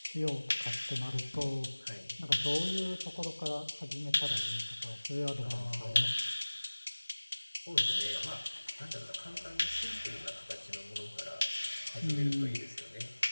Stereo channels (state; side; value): inverted; both; correlation -1.00